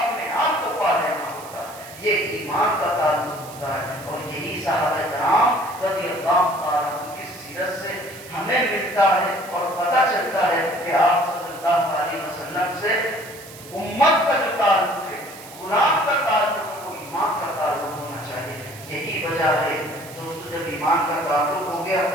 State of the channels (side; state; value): right; noise; hiss, 17 dB below the sound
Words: آپ کو پا لینا ہوتا ہے. یہ ایمان کا تعلق ہوتا ہے. اور یہی صحابہ کرام رضی اللہ تعالیٰ عنہ کی سیرت سے ہمیں ملتا ہے اور پتہ چلتا ہے کہ آپ صلی اللہ علیہ وسلم سے امت کا جو تعلق ہے, غلام کا تعلق ہے, وہ ایمان کا تعلق ہونا چاہیے. یہی وجہ ہے دوستو, جب ایمان کا تعلق ہو گیا